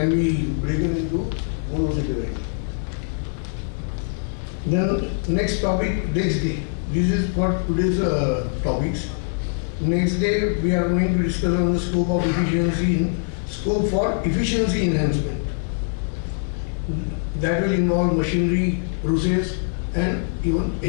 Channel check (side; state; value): right; silent; digital silence